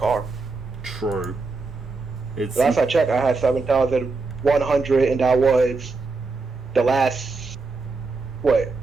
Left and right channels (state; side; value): quieter; left; 3.9 dB